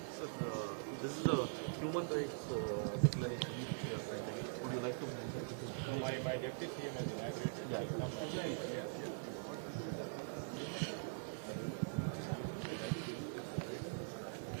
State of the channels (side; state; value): left; silent; digital silence